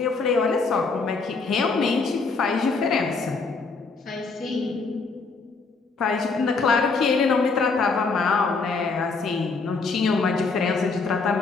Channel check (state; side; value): quieter; right; 4.3 dB